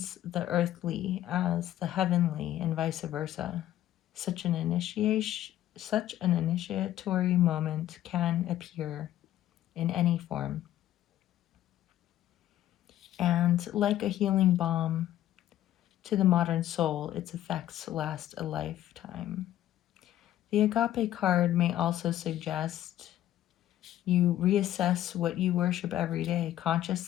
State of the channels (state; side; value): quieter; right; 12.9 dB